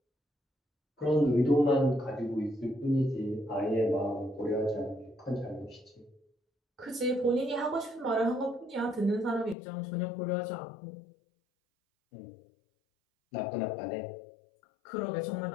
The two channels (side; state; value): right; drops out; at 9.6 s